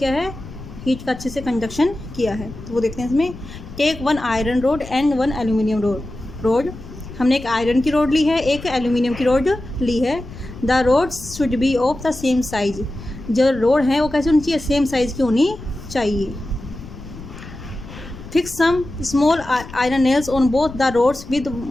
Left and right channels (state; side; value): noise; left; rumble, 14 dB below the sound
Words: है, हीट का अच्छे से कंडक्शन किया है। तो वो देखते हैं इसमें। Take one iron rod and one aluminium rod. हमने एक आयरन की रोड ली है, एक एल्यूमिनियम की रोड ली है। The rods should be of the same size. जो रोड है वो कैसे होनी चाहिए, सेम साइज की होनी चाहिए। Fix some small iron nails on both the rods with